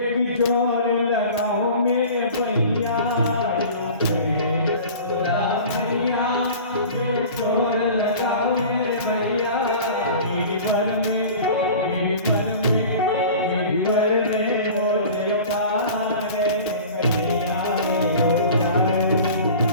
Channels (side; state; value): both; inverted; correlation -0.40